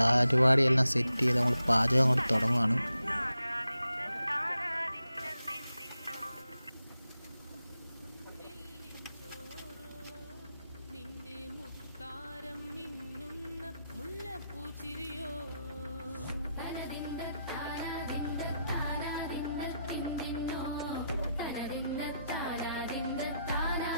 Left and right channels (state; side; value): inverted; both; correlation -0.85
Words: സെറ്റ് ചെയ്ത് നമ്മൾ പാചകം അങ്ങോട്ട് തുടങ്ങുകയാണ്.